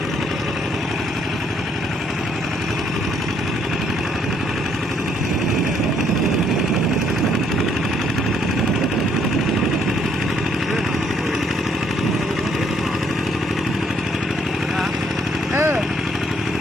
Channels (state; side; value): normal; both; correlation 0.69